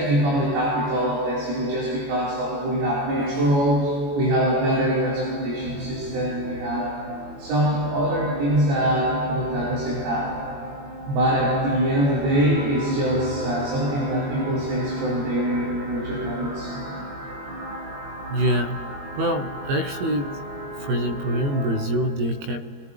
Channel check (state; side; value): late; left; 21 ms